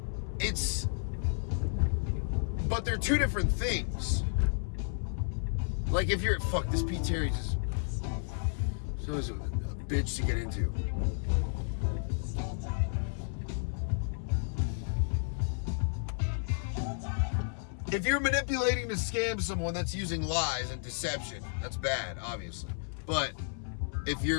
But they're two different things. Like if you're, this Pete Terry is always a bitch to get into. If you're manipulating to scam someone, that's using lies and deception. That's bad, obviously. But if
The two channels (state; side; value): silent; right; 56 dB below the other